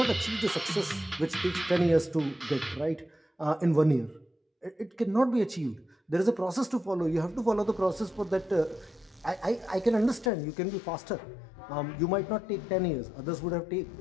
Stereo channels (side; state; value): right; drops out; at 10.3 s